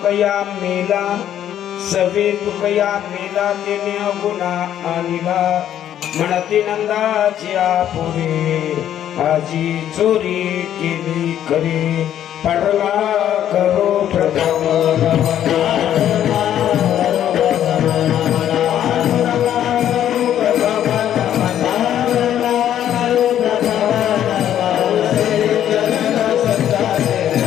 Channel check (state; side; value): quieter; right; 10.8 dB